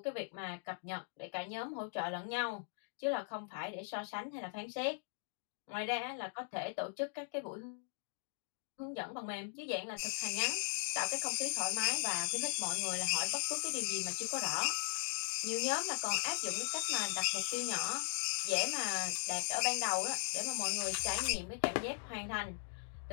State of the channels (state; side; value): silent; right; digital silence